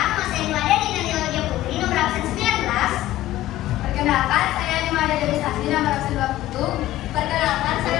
nama saya Nimada Dina Nilodia Putri, nomor absen 19. Perkenalkan, saya Nimada Dewi Sasti, nomor absen 20. Perkenalkan,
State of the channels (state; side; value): quieter; right; 15.1 dB